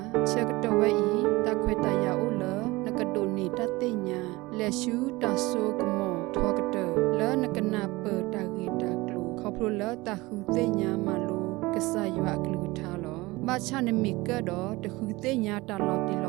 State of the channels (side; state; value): left; quieter; 21.5 dB